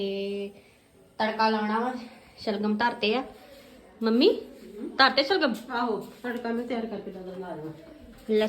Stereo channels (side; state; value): both; identical; correlation 1.00